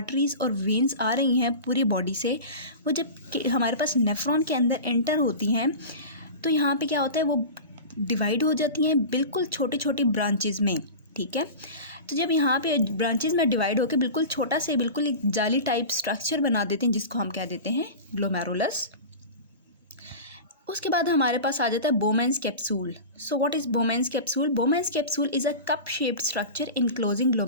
और वेन्स आ रही हैं पूरी बॉडी से, वो जब हमारे पास नेफ्रॉन के अंदर एंटर होती हैं तो यहाँ पे क्या होता है, वो डिवाइड हो जाती हैं बिल्कुल छोटी छोटी ब्रांचेज में। ठीक है, तो जब यहाँ पे ब्रांचेज में डिवाइड होकर बिल्कुल छोटा से बिल्कुल एक जाली टाइप स्ट्रक्चर बना देते हैं जिसको हम कह देते हैं ग्लोमेरुलस। उसके बाद हमारे पास आ जाता है Bowman's capsule. So what is Bowman's capsule? Bowman's capsule is a cup shaped structure enclosing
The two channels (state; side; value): inverted; both; correlation -0.31